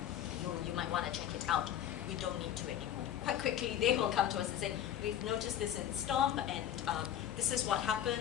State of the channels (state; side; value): quieter; right; 10.8 dB